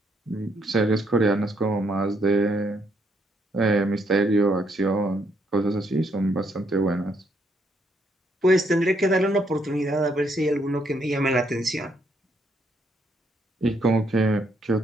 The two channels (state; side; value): normal; both; correlation 0.73